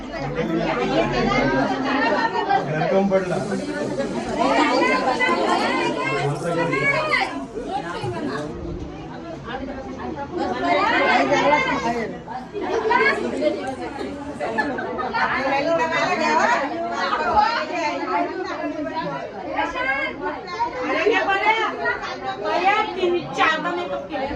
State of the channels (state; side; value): identical; both; correlation 1.00